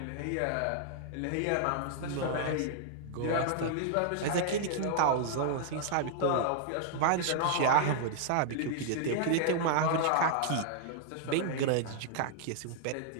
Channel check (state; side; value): different; both; correlation -0.01